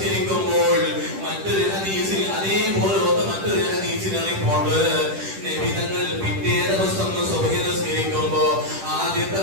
മറ്റൊരു ഹദീസിൽ അതേപോലെ മറ്റൊരു ഹദീസിൽ റിപ്പോർട്ട്, നബി തങ്ങൾ പിറ്റേ ദിവസം സുബഹി നിസ്കരിക്കുമ്പോൾ ആദ്യത്തെ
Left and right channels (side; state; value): left; late; 10 ms